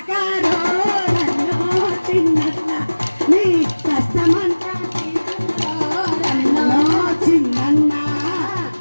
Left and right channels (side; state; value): both; inverted; correlation -1.00